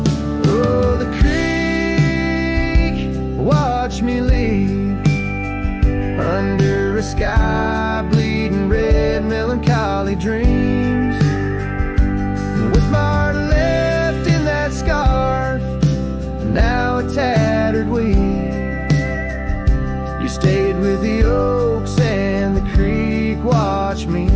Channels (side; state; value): both; identical; correlation 1.00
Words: Oh, the creek, watch me leave under a sky bleeding red, melancholy dreams. With my heart left in that scarf, now a tattered weed. You stayed with the oaks and the creek, watch me